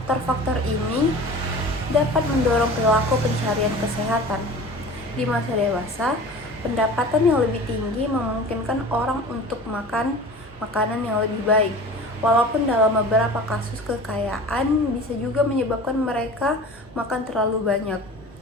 ini dapat mendorong perilaku pencarian kesehatan. Di masa dewasa, pendapatan yang lebih tinggi memungkinkan orang untuk makan makanan yang lebih baik. Walaupun dalam beberapa kasus kekayaan bisa juga menyebabkan mereka makan terlalu banyak.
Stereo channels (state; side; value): normal; both; correlation 0.39